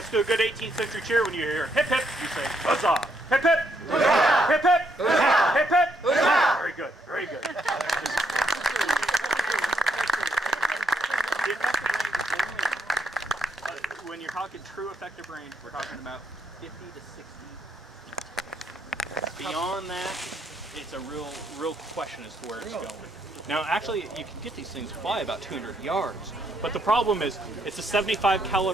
do a good 18th century cheer. When you hear hip hip, you say huzzah! Hip hip! Huzzah! Hip hip! Huzzah! Hip hip! Huzzah! Very good, very good. The effective range is only, when you're talking true effective range, we're talking about 50 to 60. Beyond that, it's a real question as to where it's going. Now, actually, you can get these things fly about 200 yards, but the problem is it's a 75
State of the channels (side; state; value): both; normal; correlation 0.75